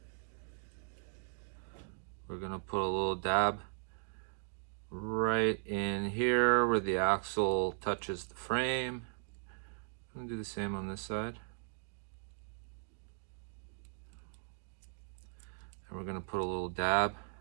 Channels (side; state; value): left; silent; digital silence